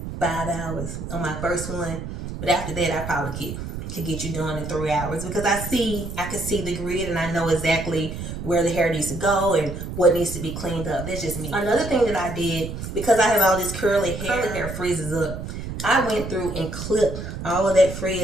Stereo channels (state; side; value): noise; right; rumble, 7 dB below the sound